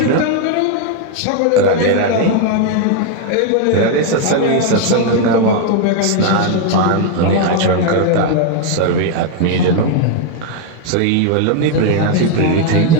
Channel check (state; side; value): different; both; correlation 0.00